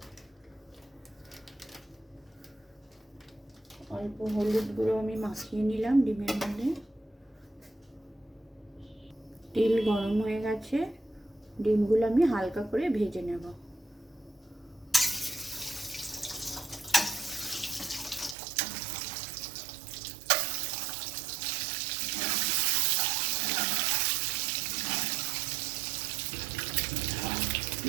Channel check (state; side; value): drops out; left; at 18.4 s